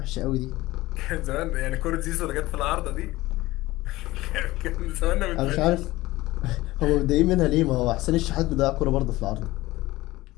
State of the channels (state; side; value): quieter; right; 18.3 dB